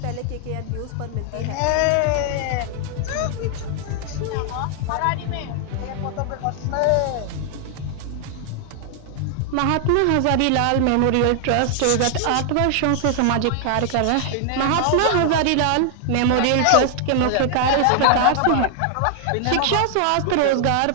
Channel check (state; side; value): different; both; correlation 0.00